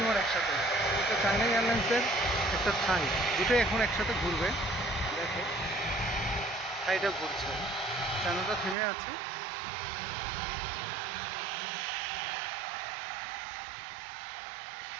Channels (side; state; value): left; drops out; at 8.8 s